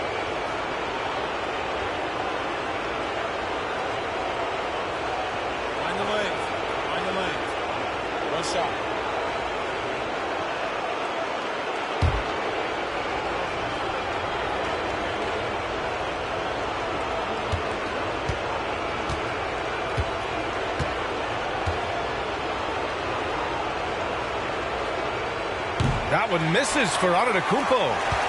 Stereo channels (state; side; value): identical; both; correlation 1.00